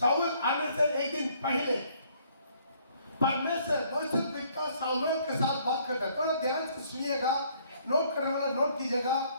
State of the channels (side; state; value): both; inverted; correlation -0.64